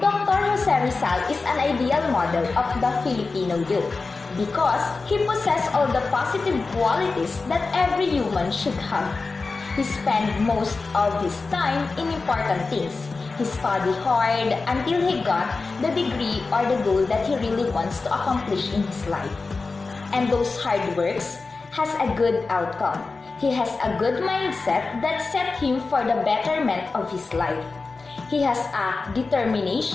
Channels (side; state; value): right; quieter; 4.0 dB